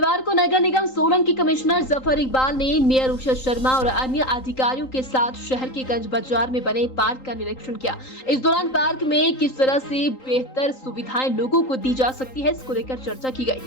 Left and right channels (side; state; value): right; late; 3.8 ms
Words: को नगर निगम सोलन की कमिश्नर जफर इकबाल ने मेयर उषा शर्मा और अन्य अधिकारियों के साथ शहर के गंज बाजार में बने पार्क का निरीक्षण किया। इस दौरान पार्क में किस तरह से बेहतर सुविधाएं लोगों को दी जा सकती है, इसको लेकर चर्चा की